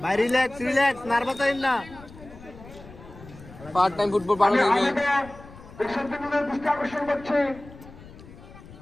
ভাই রিল্যাক্স নার্ভাস হইন না। পার্ট টাইম ফুটবল বানানো যাবে, আকর্ষণ করছে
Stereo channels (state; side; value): noise; left; rumble, 19 dB below the sound